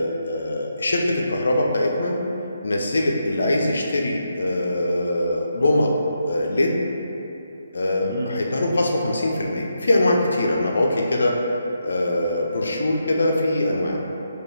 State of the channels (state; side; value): inverted; both; correlation -0.83